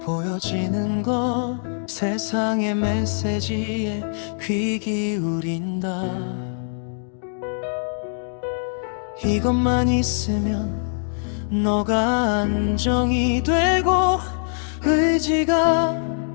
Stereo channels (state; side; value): silent; right; digital silence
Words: 보여지는 것, 세상의 메시지에 귀 기울인다. 이것만 있으면 너가 안정이 되고 의지가